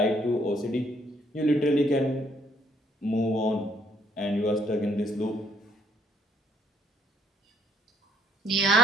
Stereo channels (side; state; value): both; normal; correlation 0.66